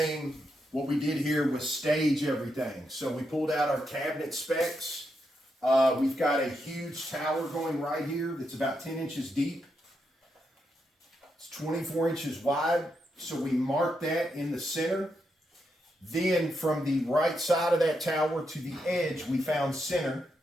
What we did here was stage everything. So we pulled out our cabinet specs. We've got a huge tower going right here that's about 10 inches deep. It's 24 inches wide. So we marked that in the center. Then from the right side of that tower to the edge, we found center.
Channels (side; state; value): both; normal; correlation 0.82